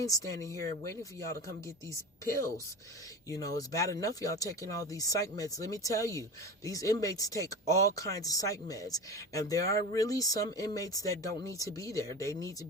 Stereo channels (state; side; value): normal; both; correlation 0.29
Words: standing here waiting for y'all to come get these pills. It's bad enough y'all taking all these psych meds. Let me tell you, these inmates take all kinds of psych meds, and there are really some inmates that don't need to be there. They need to